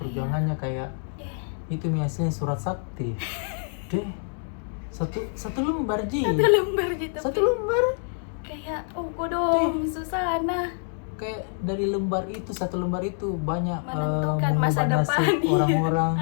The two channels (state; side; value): silent; right; 61 dB below the other